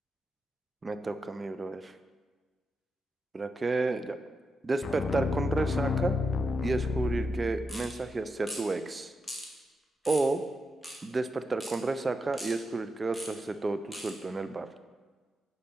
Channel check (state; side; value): normal; both; correlation 0.86